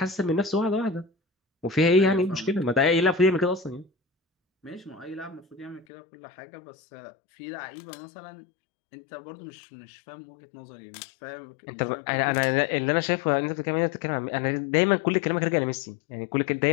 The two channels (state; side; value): drops out; right; at 5.9 s